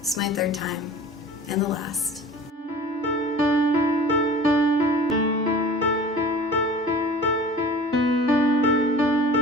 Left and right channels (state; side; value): normal; both; correlation 0.42